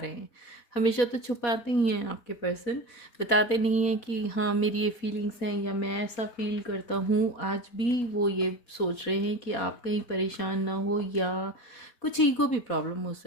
हैं। हमेशा तो छुपाते ही हैं आपके पर्सन, बताते नहीं हैं कि हाँ मेरी ये फीलिंग्स हैं या मैं ऐसा फील करता हूँ। आज भी वो ये सोच रहे हैं कि आप कहीं परेशान ना हो, या कुछ ईगो भी प्रॉब्लम हो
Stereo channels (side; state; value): right; late; 4.2 ms